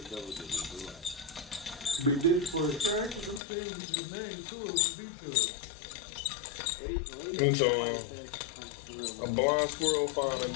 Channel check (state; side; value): drops out; right; at 3.4 s